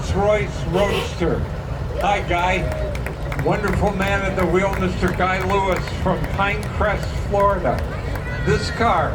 Roadster. Hi, Guy. Wonderful man at the wheel, Mr. Guy Lewis from Pinecrest, Florida. This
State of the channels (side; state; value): both; identical; correlation 1.00